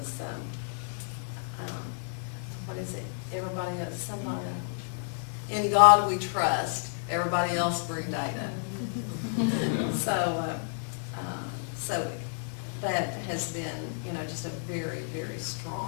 what is it? Everybody else, somebody, in God we trust, everybody else bring data. So that has been, just a very, very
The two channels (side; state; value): right; silent; 58 dB below the other